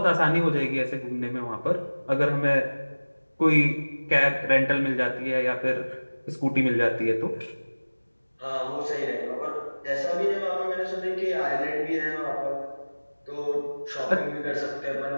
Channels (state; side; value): inverted; both; correlation -1.00